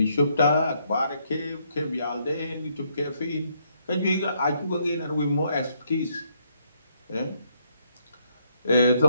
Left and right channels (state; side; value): inverted; both; correlation -0.72